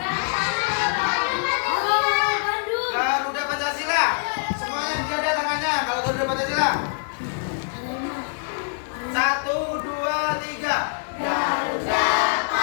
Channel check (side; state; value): right; silent; digital silence